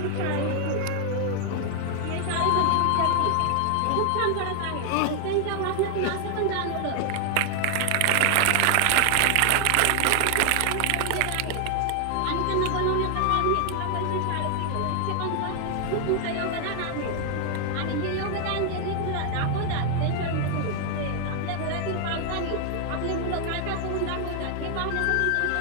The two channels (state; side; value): different; both; correlation 0.00